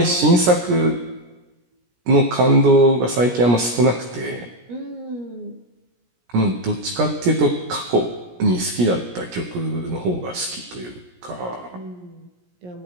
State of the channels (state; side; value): late; left; 17 ms